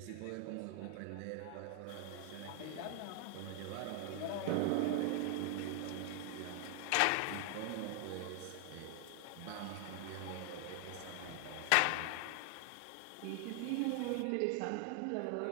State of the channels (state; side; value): different; both; correlation 0.00